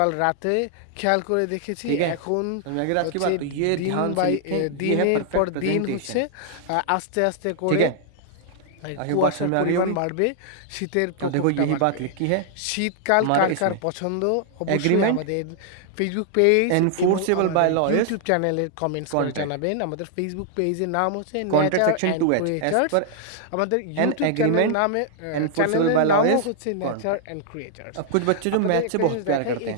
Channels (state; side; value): different; both; correlation -0.01